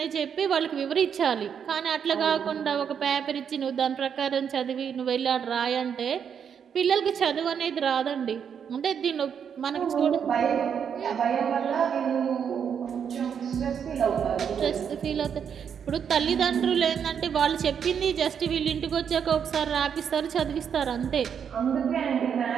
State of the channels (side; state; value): left; quieter; 7.6 dB